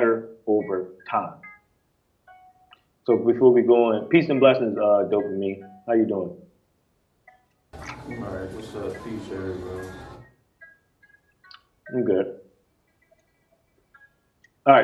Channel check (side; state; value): both; identical; correlation 1.00